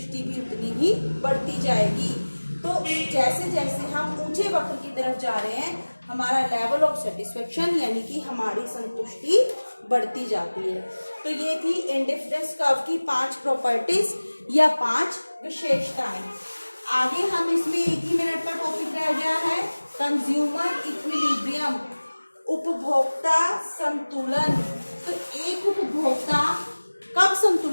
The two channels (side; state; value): both; inverted; correlation -1.00